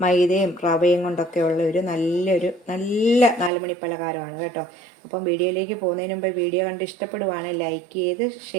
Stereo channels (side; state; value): left; drops out; at 3.5 s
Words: മൈദയും റവയും കൊണ്ടൊക്കെ ഉള്ള നല്ല 4 മണി പലഹാരമാണ് കേട്ടോ. അപ്പം വീഡിയോയിലേക്ക് പോകുന്നതിന് മുമ്പ് വീഡിയോ കണ്ട് ഇഷ്ടപ്പെടുവാണ് ലൈക്ക് ചെയ്ത്